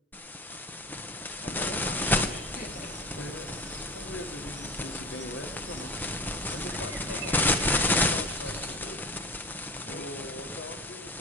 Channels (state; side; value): normal; both; correlation 0.34